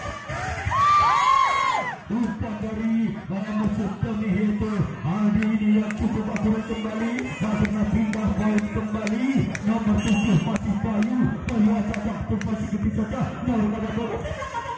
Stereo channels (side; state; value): both; identical; correlation 1.00